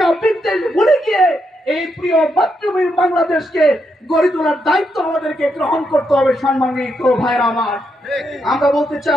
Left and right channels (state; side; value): normal; both; correlation 0.80